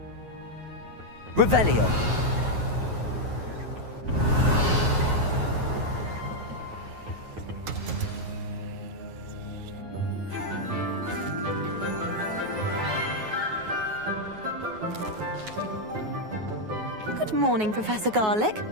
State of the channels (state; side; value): late; left; 9.4 ms